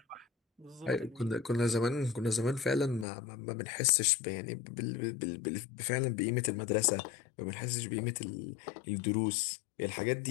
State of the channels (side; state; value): right; drops out; at 3.1 s